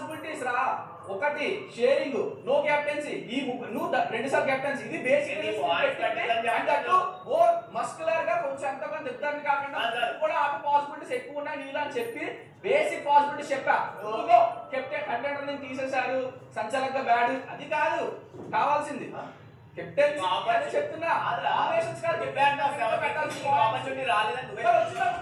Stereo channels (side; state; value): both; identical; correlation 1.00